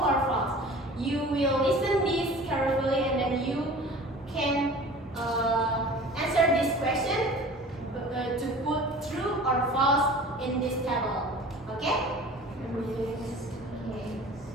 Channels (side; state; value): both; normal; correlation 0.42